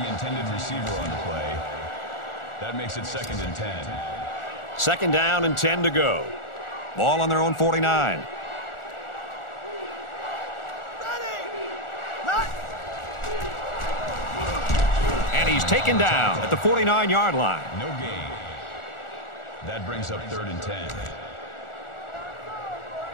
intended receiver on the play. That makes it 2nd and 10. 2nd down and 10 to go. Ball on their own 49. And he's taken down at the 49-yard line. No gain. That brings up 3rd and 10.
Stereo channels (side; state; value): right; late; 1.4 ms